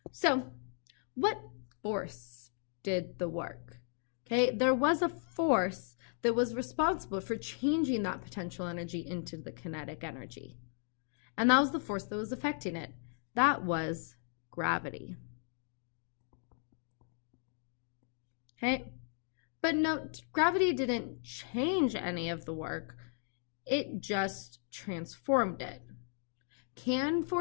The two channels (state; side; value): silent; right; 54 dB below the other